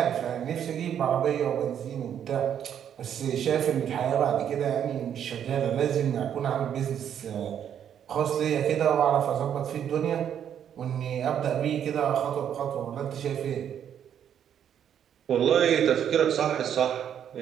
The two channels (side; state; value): left; quieter; 9.2 dB